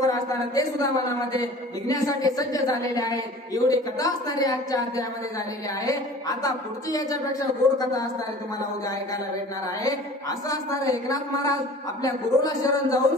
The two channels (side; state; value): both; normal; correlation 0.44